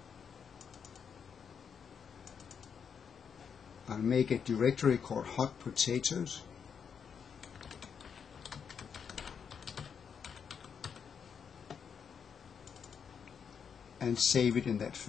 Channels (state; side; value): quieter; right; 7.0 dB